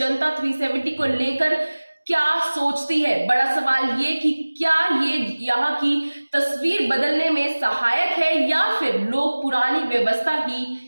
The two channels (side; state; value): both; inverted; correlation -1.00